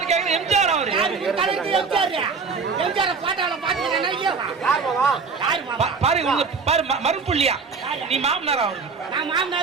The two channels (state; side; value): quieter; left; 5.0 dB